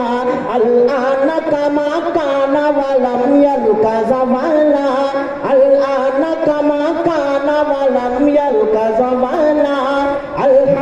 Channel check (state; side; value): identical; both; correlation 1.00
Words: الآن كما كان ولم يلق زمانا الآن كما كان ولم يلق زمانا